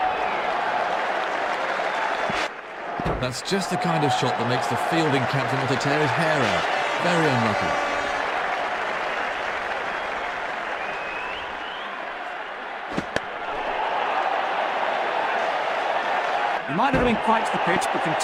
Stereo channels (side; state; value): both; identical; correlation 1.00